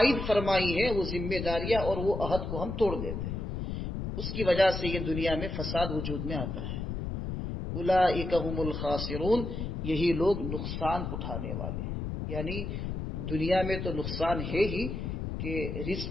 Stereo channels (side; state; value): left; noise; rumble, 4 dB below the sound